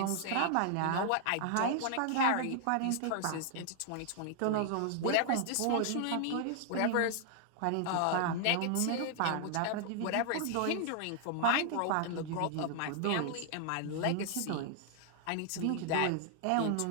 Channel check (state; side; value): different; both; correlation 0.00